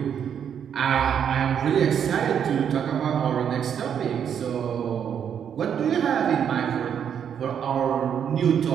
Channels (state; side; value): quieter; left; 8.3 dB